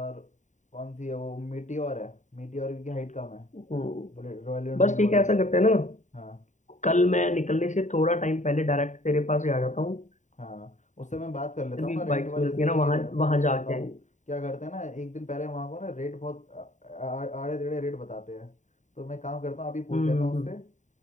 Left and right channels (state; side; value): late; right; 0.35 ms